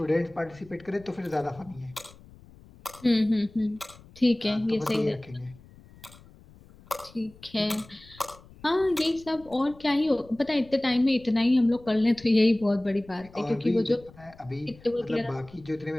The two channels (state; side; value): noise; left; rumble, 23 dB below the sound